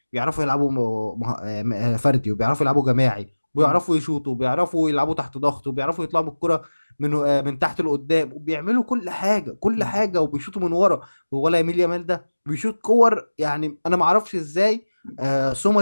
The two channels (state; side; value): inverted; both; correlation -1.00